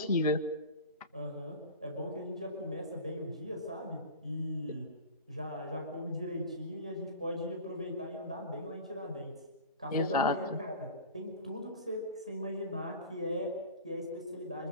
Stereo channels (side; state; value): both; inverted; correlation -0.34